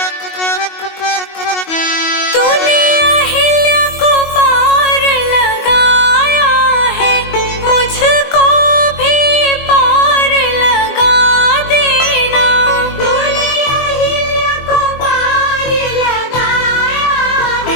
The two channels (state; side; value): late; right; 22 ms